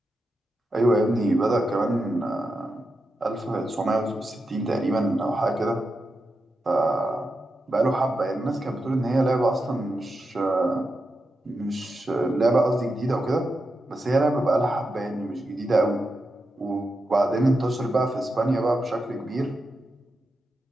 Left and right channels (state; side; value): normal; both; correlation 0.88